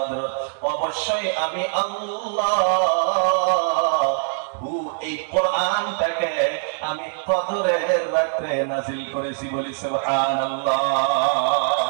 অবশ্যই আমি আল্লাহ এই কোরআনটাকে আমি কদরের রাতে নাযিল করেছি, বলি সুবহানাল্লাহ।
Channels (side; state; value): left; silent; 64 dB below the other